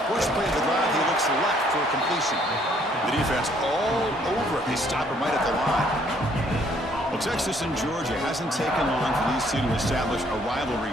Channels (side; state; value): both; normal; correlation 0.64